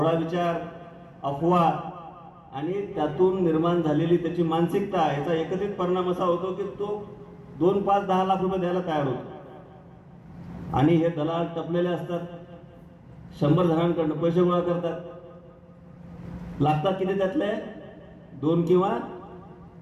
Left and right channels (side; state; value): both; identical; correlation 1.00